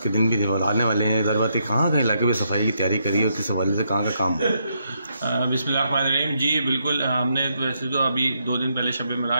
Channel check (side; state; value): both; inverted; correlation -0.77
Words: के दिन भी आने वाले हैं। ज़रूरत कहाँ कहाँ इलाके में सफाई की तैयारी करी है, किस हवाले से कहाँ का काम है? बिस्मिल्लाहिर्रहमानिर्रहीम। जी बिल्कुल, हमने वैसे तो अभी 2 दिन पहले शब